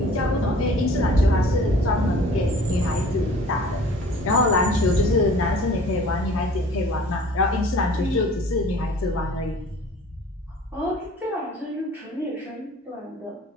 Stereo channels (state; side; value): normal; both; correlation 0.48